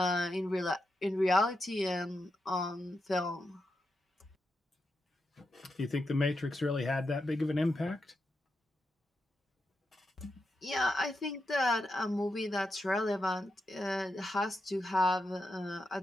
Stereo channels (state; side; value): normal; both; correlation 0.87